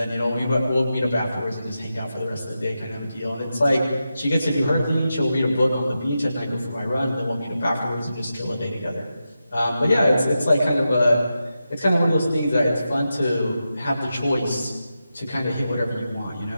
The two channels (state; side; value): inverted; both; correlation -0.89